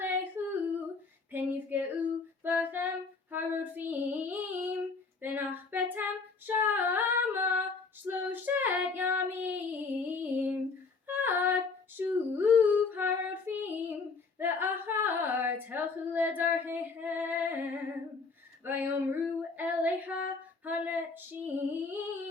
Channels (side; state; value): right; quieter; 4.4 dB